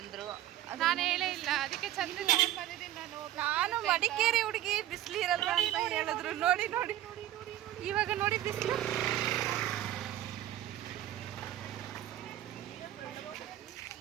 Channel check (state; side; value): quieter; left; 13.3 dB